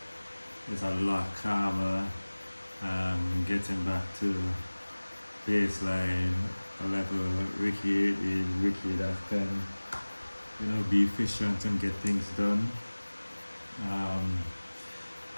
is a lot calmer. Getting back to baseline, a level Ricky is Ricky that can, be efficient and get things done. Um,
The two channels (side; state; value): both; inverted; correlation -1.00